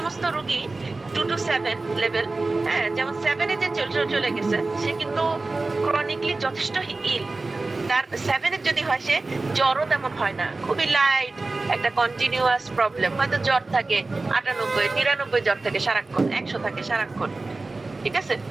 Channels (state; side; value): quieter; left; 3.4 dB